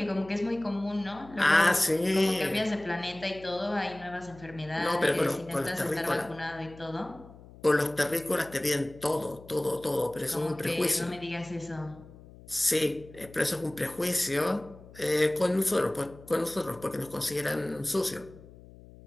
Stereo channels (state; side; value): noise; left; hum, 20 dB below the sound